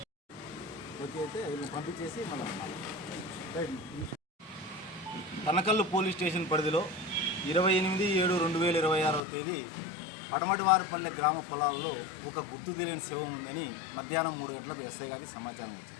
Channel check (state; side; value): drops out; right; at 9.2 s